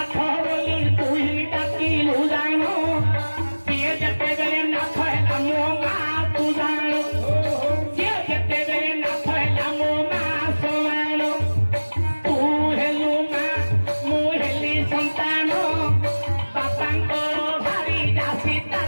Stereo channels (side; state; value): both; inverted; correlation -1.00